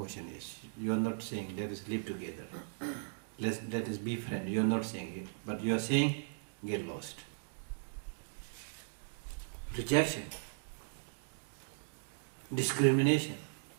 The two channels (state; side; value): silent; left; digital silence